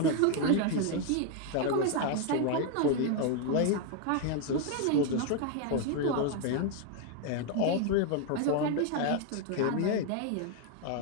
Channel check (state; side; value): different; both; correlation 0.01